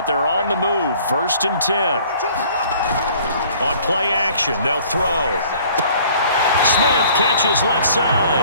they're on the move. 1st and 10. On play action, they'll throw. Smith catches left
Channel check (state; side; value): inverted; both; correlation -0.54